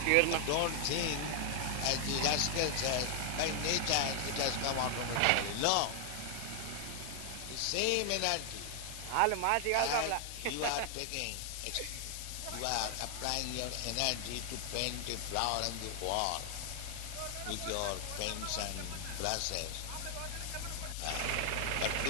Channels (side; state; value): both; different; correlation 0.00